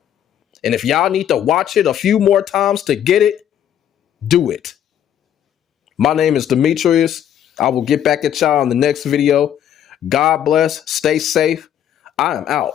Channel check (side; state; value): right; quieter; 10.1 dB